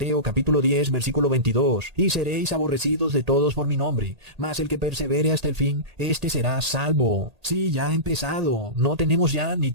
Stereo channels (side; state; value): left; late; 1.8 ms